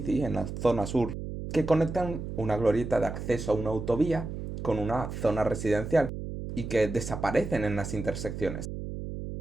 en la zona sur que conectan una glorieta de acceso a una autovía con una zona residencial y que desaparecen en las intersecciones.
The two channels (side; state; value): right; noise; hum, 7 dB below the sound